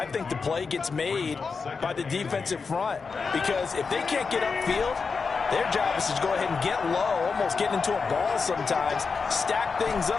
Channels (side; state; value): right; quieter; 5.0 dB